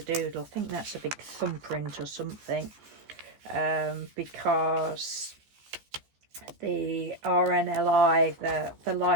Doodle. I think that's a big thumbprint or something, because the RNLI, the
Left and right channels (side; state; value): left; late; 14 ms